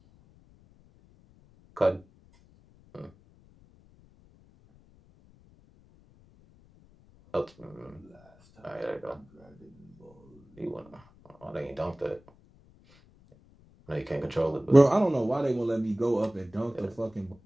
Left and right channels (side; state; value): left; noise; rumble, 28 dB below the sound